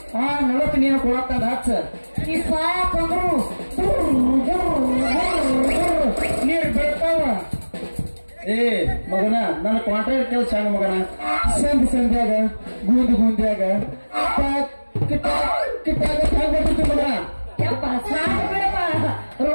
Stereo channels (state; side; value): inverted; both; correlation -1.00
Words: ನಳಕ್ಕೆ ನೀನು ಕೊಡತ್ತಂದ ಹಚ್ಚ ಈ ಸಾಕಂದ್ರು ನೀರು ಬೆಳ್ತಾವ. ಮಗನ ನನ್ನ ಕಾಂಟ್ರಾಕ್ಟ್ ಕೆಲಸ ಸಣ್ಣ ಮಗನ ಸಂಧ್ಯಾಗ ಗುಂದ್ಯಾಗ ಮಗನ ಯಪ್ಪ ಸಾಕು ಬಿಡಪ್ಪ